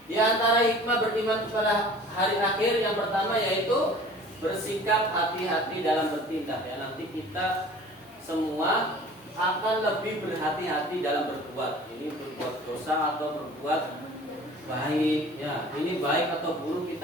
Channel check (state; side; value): normal; both; correlation 0.45